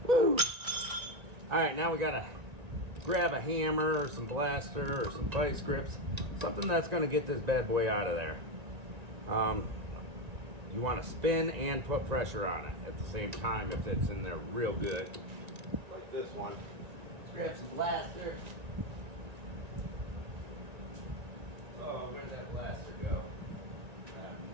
Woo! All right, now we gotta grab a hammer or some blaster or some vice grips, something that's gonna get this bad boy out of there. You wanna spin and put pressure on it at the same time if it's in there real good. Like this one. Let's grab some blaster. Oh, where'd that blaster go? I have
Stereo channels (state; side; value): late; left; 1.9 ms